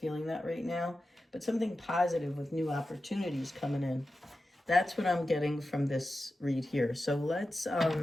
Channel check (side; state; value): both; normal; correlation 0.92